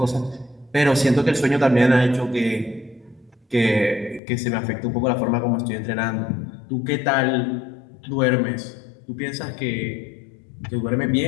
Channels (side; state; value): right; drops out; at 4.2 s